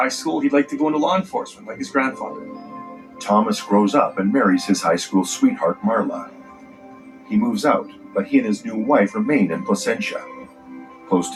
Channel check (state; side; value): identical; both; correlation 1.00